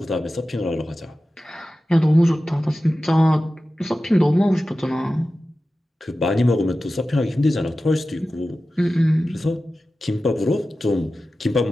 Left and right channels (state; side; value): normal; both; correlation 0.94